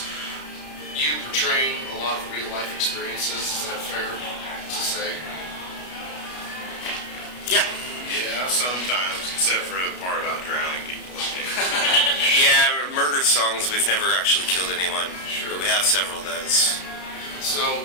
you portraying a lot of real life experiences. Is that fair to say? Yeah. Yeah, sometimes, except for the part about drowning people. Yeah, murder songs, we've never actually killed anyone. Sure. But we have several of those. So,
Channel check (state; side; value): late; right; 33 ms